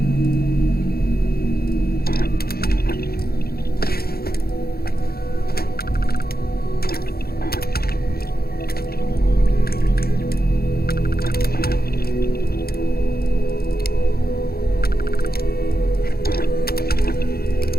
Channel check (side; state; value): right; late; 0.45 ms